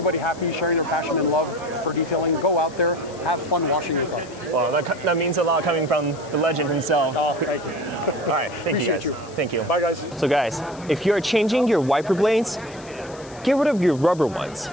happy, sharing their passion and love for detailing. Go out there, have fun washing your car. Well, that means a lot coming from the legend himself. Oh, thank you. All right, thank you guys. Thank you. Bye, guys. So guys, if you're changing your wiper blades, get rid of your rubber ones,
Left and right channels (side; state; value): left; noise; hiss, 21 dB below the sound